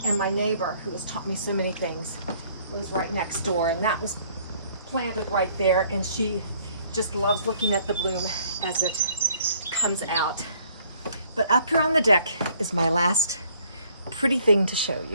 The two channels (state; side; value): inverted; both; correlation -0.61